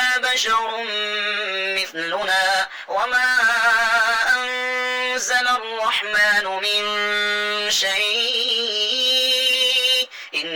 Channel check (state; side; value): identical; both; correlation 1.00